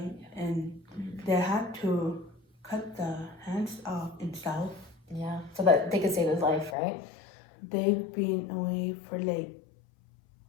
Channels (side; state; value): right; drops out; at 6.8 s